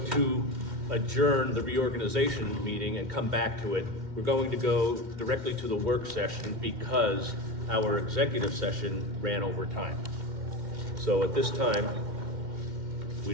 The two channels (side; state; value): left; late; 2.1 ms